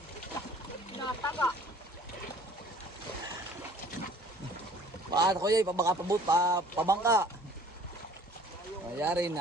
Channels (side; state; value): both; normal; correlation 0.52